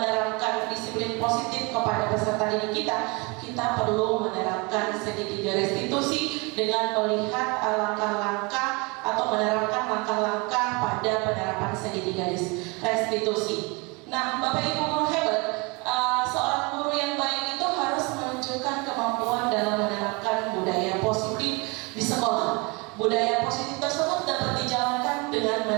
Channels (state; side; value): quieter; left; 28.4 dB